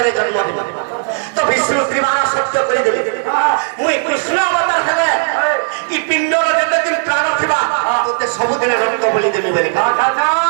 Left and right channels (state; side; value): silent; left; digital silence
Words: জন্ম দিব তো বিষ্ণু ত্রিবার সত্য করে দেবে মুই কৃষ্ণ অবতার হেলে ই পিণ্ডর যেতেদিন প্রাণ থিবা তোতে সবদিন রক্ত বলি দেবে বলি